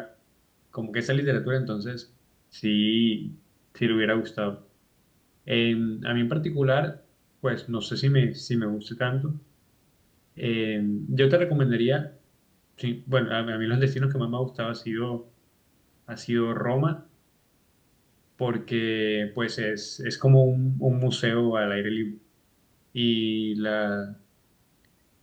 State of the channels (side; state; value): both; identical; correlation 1.00